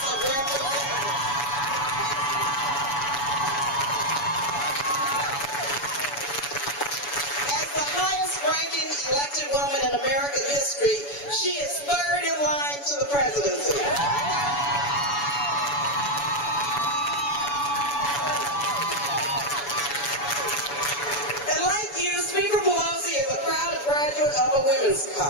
of Representatives. As the highest-ranking elected woman in American history, she is third in line to the presidency. And like you, Speaker Pelosi is a proud graduate of a women's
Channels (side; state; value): right; late; 7.0 ms